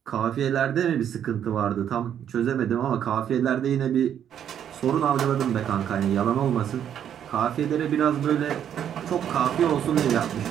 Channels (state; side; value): quieter; left; 9.4 dB